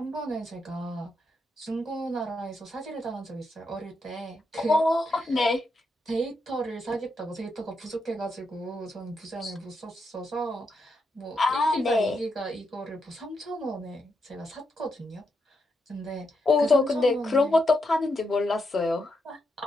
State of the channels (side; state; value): both; normal; correlation 0.82